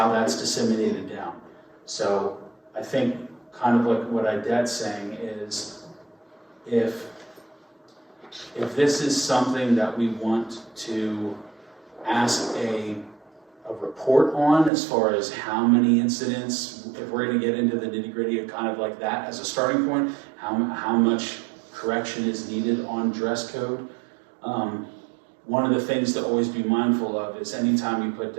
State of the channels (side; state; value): left; drops out; at 14.7 s